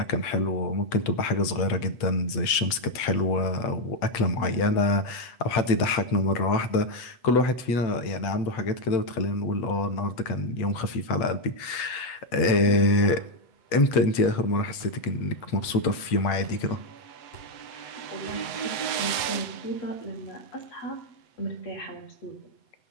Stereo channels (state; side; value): late; right; 8.1 ms